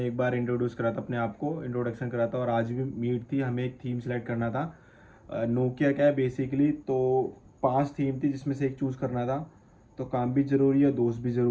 एक बार इंट्रोड्यूस करा था, अपने आप को इंट्रोडक्शन करा था, और आज भी मीट थी, हमें एक थीम सेलेक्ट करना था। नोकिया क्या है बेसिकली, तो 5 थीम थी जिसमें से एक चूज़ करना था। तो काम भी ज़रूरी है, दोस्त भी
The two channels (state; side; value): identical; both; correlation 1.00